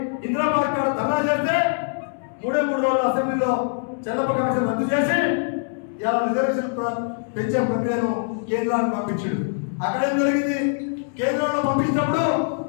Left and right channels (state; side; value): silent; right; 63 dB below the other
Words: ఇందిరాబాద్ కాడ ధర్నా చేస్తే 3 రోజులు అసెంబ్లీలో చెల్లమ్మ కమిషన్ రద్దు చేసి ఇలా రిజర్వేషన్ పెంచే ప్రక్రియను కేంద్రానికి పంపించాడు. అక్కడ ఏం జరిగింది? కేంద్రంలో పంపించినప్పుడు